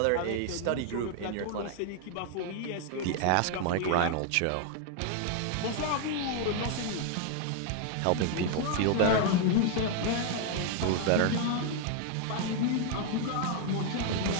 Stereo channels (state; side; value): different; both; correlation 0.00